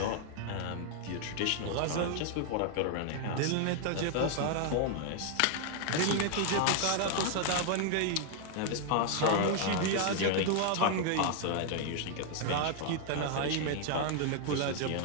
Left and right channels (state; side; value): different; both; correlation 0.00